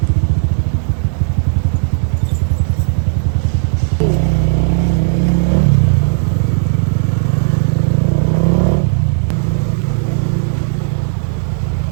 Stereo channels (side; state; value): left; silent; digital silence